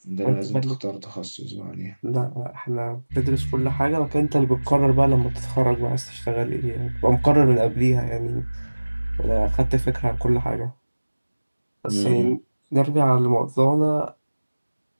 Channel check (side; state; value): both; inverted; correlation -1.00